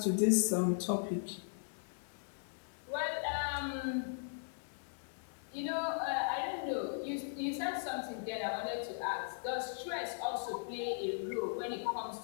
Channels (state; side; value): silent; right; digital silence